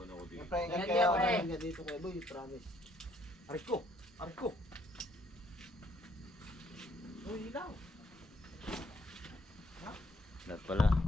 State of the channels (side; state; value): both; normal; correlation 0.67